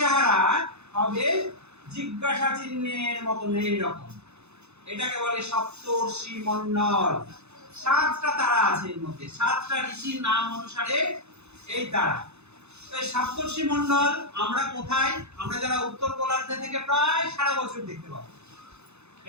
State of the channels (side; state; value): left; late; 0.81 ms